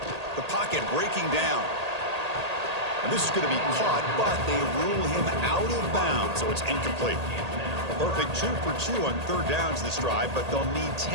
The pocket breaking down. And this is going to be caught, but they rule him out of bounds, so it's incomplete. A perfect 2 for 2 on third downs this drive, but they'll need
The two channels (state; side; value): late; left; 1.8 ms